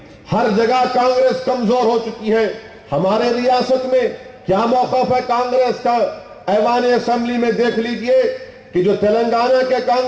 हर जगह कांग्रेस कमजोर हो चुकी है। हमारे रियासत में क्या मौकफ है कांग्रेस का? ऐवान असेंबली में देख लीजिए कि जो तेलंगाना के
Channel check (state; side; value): identical; both; correlation 1.00